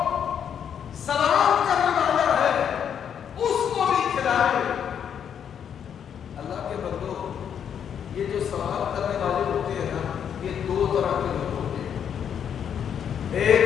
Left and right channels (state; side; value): quieter; right; 8.3 dB